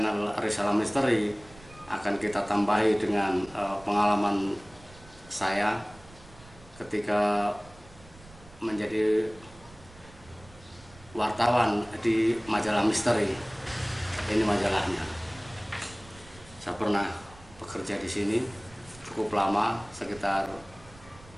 Risalah Misteri akan kita tambahi dengan pengalaman saya ketika menjadi wartawan di majalah misteri. Ini majalahnya. Saya pernah bekerja di sini cukup lama, sekitar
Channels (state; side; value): noise; right; rumble, 22 dB below the sound